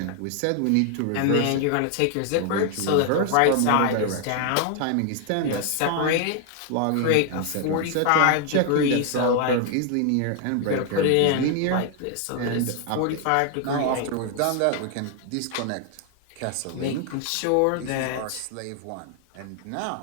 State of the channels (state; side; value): different; both; correlation 0.00